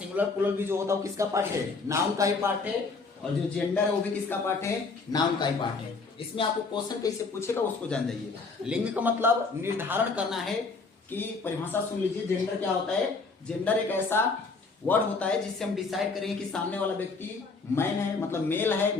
प्लूरल भी जो होता है वो किसका पार्ट है? नाउन का ही पार्ट है। और जो जेंडर है वो भी किसका पार्ट है? नाउन का ही पार्ट है। इसमें आपको क्वेश्चन कैसे पूछेगा उसको जान जाइए। लिंग का मतलब निर्धारण करना है कि परिभाषा सुन लीजिए। जेंडर क्या होता है? जेंडर एक ऐसा वर्ड होता है जिससे हम डिसाइड करेंगे कि सामने वाला व्यक्ति मैन है, मतलब मेल है,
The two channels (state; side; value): quieter; right; 4.2 dB